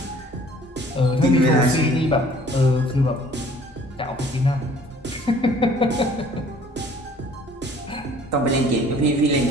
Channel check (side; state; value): both; normal; correlation 0.53